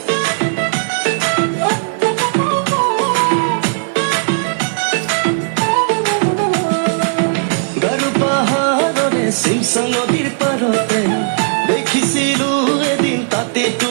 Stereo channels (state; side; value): silent; left; digital silence